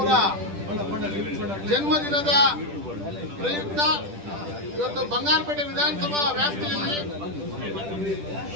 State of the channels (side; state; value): left; late; 10 ms